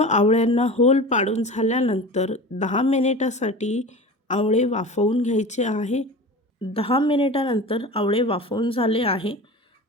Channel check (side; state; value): both; normal; correlation 0.34